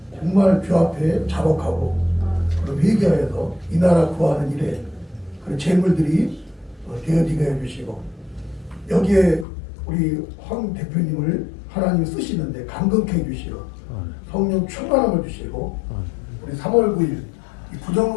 정말 주 앞에 자복하고 회개하여서 이 나라 구하는 일에 그런 재물들이 되어지게 해주시고 여기에 우리 황 대표님을 하나님 쓰시는데 감동케 해주시고 성령 충만함을 주시고 우리 3월 9일 이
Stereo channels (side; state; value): right; drops out; at 9.5 s